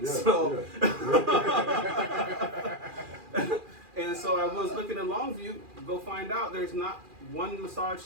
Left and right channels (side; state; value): left; late; 2.4 ms